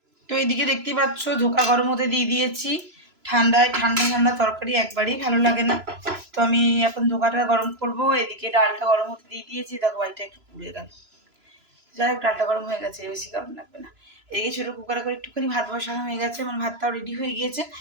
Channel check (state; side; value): late; left; 3.0 ms